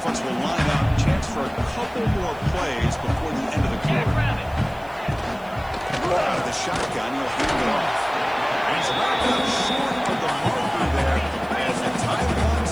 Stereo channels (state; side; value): noise; right; hiss, 27 dB below the sound